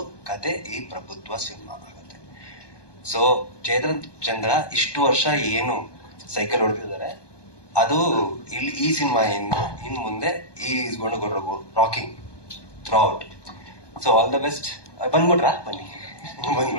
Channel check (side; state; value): right; late; 1.2 ms